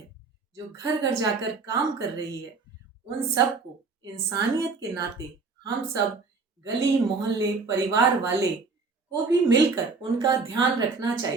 जो घर घर जाकर काम कर रही है, उन सबको इंसानियत के नाते हम सब गली मोहल्ले परिवार वाले को भी मिलकर उनका ध्यान रखना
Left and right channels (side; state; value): left; quieter; 4.4 dB